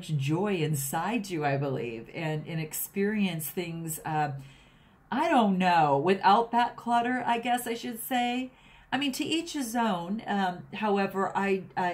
joy inside you, I believe, and experience things, I don't know, without that clutter, I guess I should say. I mean, to each his own. However,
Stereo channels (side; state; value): both; identical; correlation 1.00